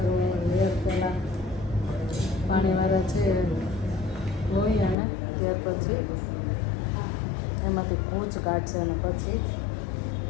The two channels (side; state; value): right; drops out; at 5.0 s